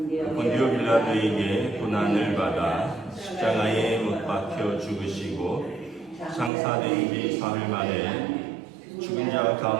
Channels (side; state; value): left; drops out; at 6.5 s